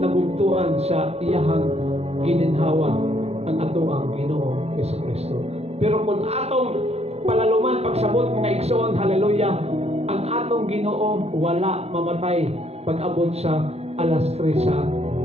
nabugtuan sa iyahang gininhawa ang atoang Ginoo Hesus Kristo. Pero kung atong palaluman pagsabot mga igsoon, hallelujah, ang atong Ginoo wala mamatay pag-abot sa alas 3 sa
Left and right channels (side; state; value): left; late; 0.30 ms